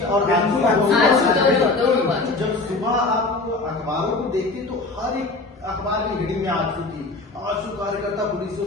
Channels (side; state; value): right; quieter; 3.4 dB